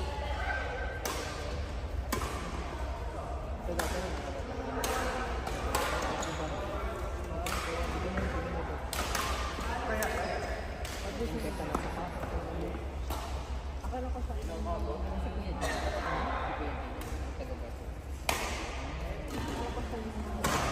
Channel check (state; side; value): identical; both; correlation 1.00